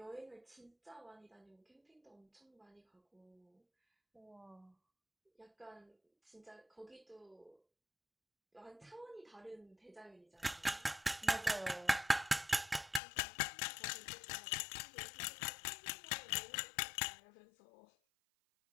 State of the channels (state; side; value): drops out; right; at 13.0 s